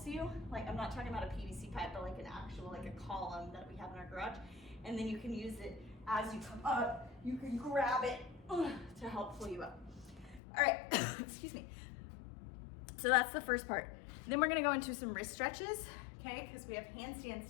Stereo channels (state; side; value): drops out; right; at 10.4 s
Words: you. Like, I'm not talking about a PVC pipe, but like an actual, like a column that we have in our garage. And then you can use it as you come up, you can grab it to help pull you up. All right, excuse me. So that's the first part. Then we're gonna go into some wrist stretches, okay? Because we have